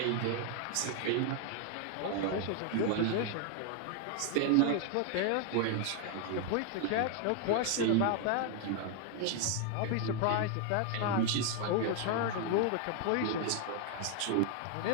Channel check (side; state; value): both; different; correlation 0.00